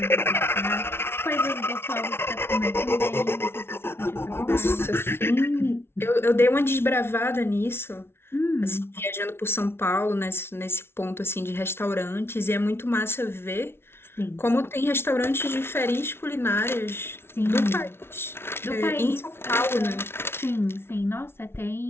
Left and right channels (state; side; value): late; right; 0.12 ms